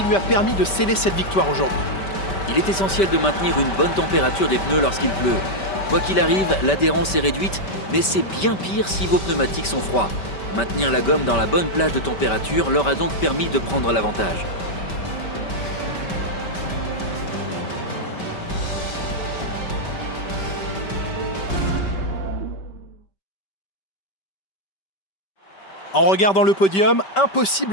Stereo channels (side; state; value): right; late; 5.2 ms